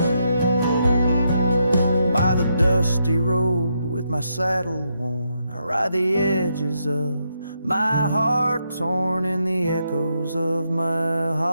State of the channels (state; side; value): inverted; both; correlation -0.80